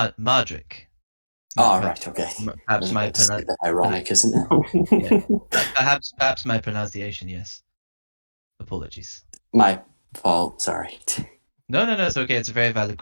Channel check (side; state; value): both; inverted; correlation -1.00